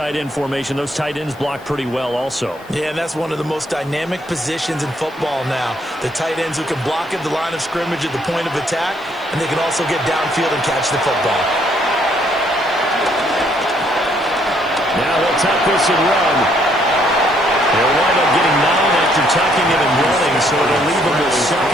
end formation. Those tight ends block pretty well also. Yeah, and that's one of the most dynamic positions in football now. The tight ends who can block at the line of scrimmage at the point of attack, and they can also get downfield and catch the football. Now they'll tuck this and run. They'll wind up getting 9 after tucking it and running, so it'll leave them with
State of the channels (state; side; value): noise; left; hiss, 28 dB below the sound